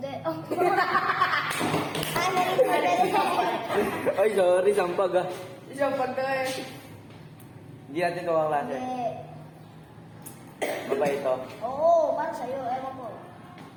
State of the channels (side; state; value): both; identical; correlation 1.00